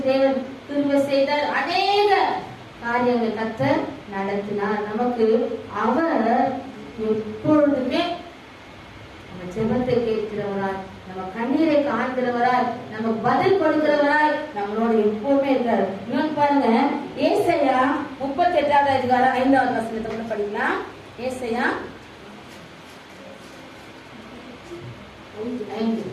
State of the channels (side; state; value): both; identical; correlation 1.00